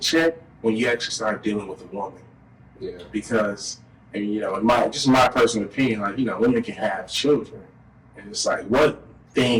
when you actually start dealing with a woman. Yeah. Because, and you know, in my personal opinion, like, you know, women can have children, and it's like, what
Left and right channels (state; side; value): identical; both; correlation 1.00